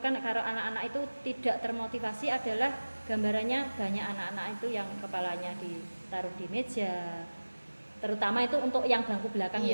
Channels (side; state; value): both; inverted; correlation -1.00